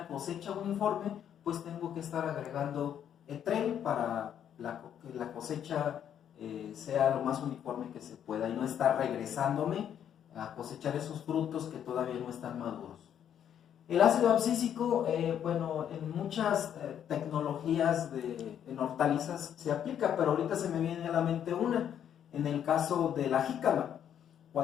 cosecha uniforme, pues tengo que estar agregando Etrel para que la cosecha sea lo más uniforme que se pueda y no estar regresándome a cosechar esos frutos que todavía no están maduros. El ácido abscísico, bueno, en muchas tecnologías en hortalizas se aplica, pero ahorita se me viene a la mente una, en el caso de la jícama.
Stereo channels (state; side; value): quieter; right; 9.4 dB